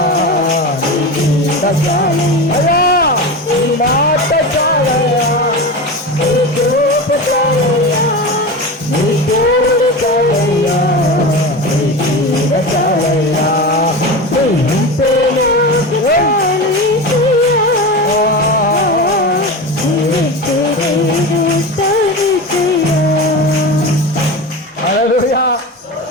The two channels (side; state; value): both; normal; correlation 0.25